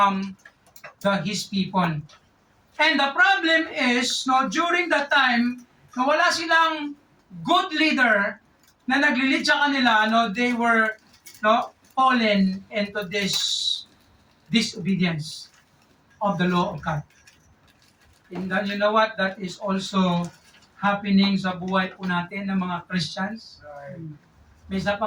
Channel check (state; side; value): identical; both; correlation 1.00